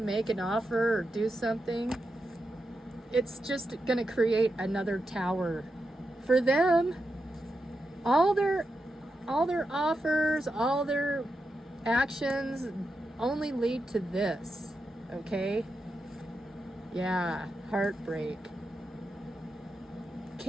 an offer or do something, it's just going to create another tower. For them, all their offers, all their actions only lead to this, okay? Yeah, heartbreak.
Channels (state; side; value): normal; both; correlation 0.87